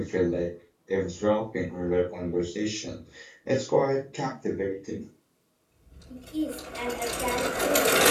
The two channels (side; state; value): both; identical; correlation 1.00